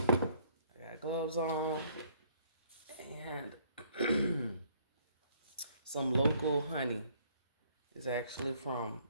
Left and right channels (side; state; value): both; inverted; correlation -0.63